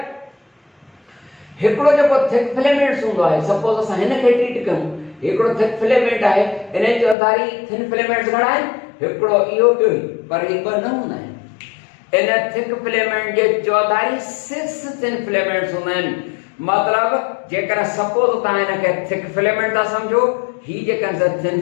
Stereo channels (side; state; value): right; drops out; at 7.2 s